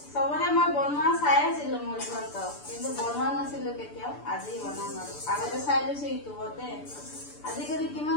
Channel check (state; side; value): late; right; 6.9 ms